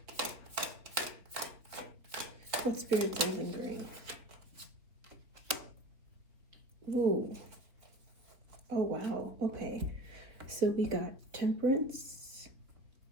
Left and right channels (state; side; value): late; left; 3.5 ms